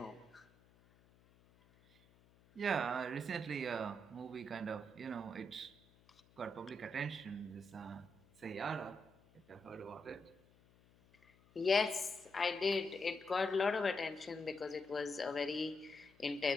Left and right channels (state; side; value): noise; left; hum, 29 dB below the sound